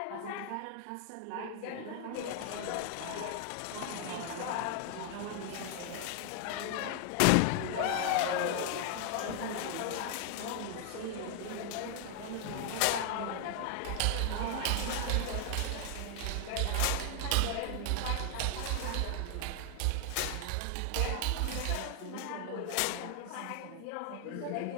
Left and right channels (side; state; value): both; different; correlation 0.00